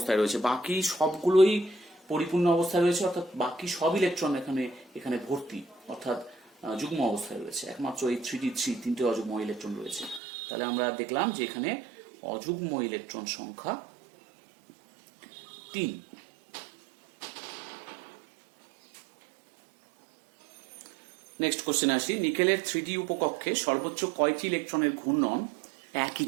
রয়েছে, বাকি সবগুলোই পরিপূর্ণ অবস্থায় রয়েছে, অর্থাৎ বাকি সব ইলেকট্রন এখানে ভর্তি, অর্থাৎ যুগ্ম অবস্থায় রয়েছে, একমাত্র এই 3d3 তিনটে অযুগ্ম ইলেকট্রন রয়েছে। তাহলে আমরা দেখলাম যে এখানে অযুগ্ম ইলেকট্রন সংখ্যা 3। নেক্সট কোশ্চেন আসি, নিকেলের 3d উপকক্ষে সর্বোচ্চ কয়টি ইলেকট্রনের ঘূর্ণন একই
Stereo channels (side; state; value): left; drops out; at 10.2 s